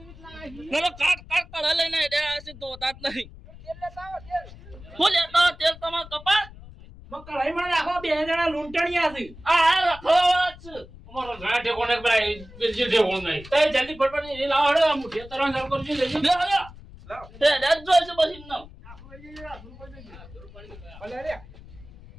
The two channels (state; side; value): noise; left; rumble, 18 dB below the sound